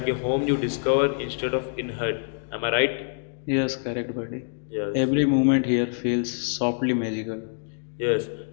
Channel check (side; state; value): right; silent; digital silence